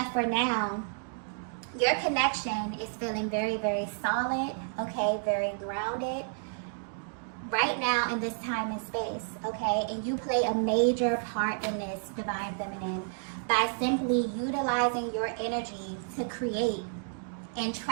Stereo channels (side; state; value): left; silent; digital silence